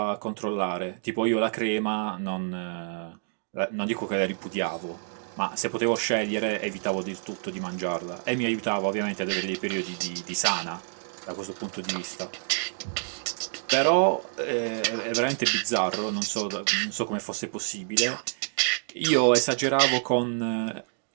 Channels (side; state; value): left; silent; digital silence